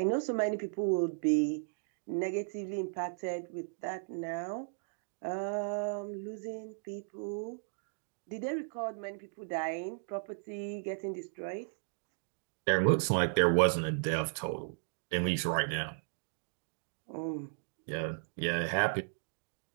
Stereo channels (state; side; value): silent; left; digital silence